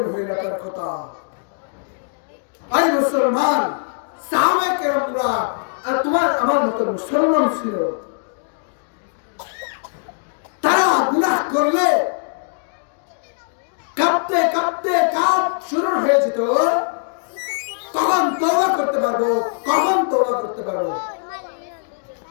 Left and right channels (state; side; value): silent; right; digital silence